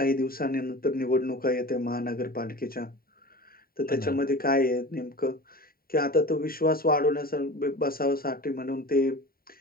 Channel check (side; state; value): right; late; 0.43 ms